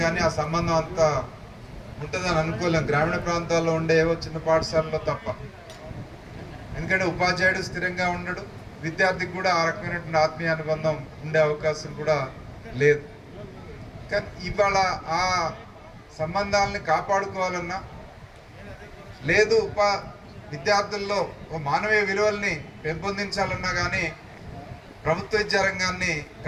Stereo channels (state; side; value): identical; both; correlation 1.00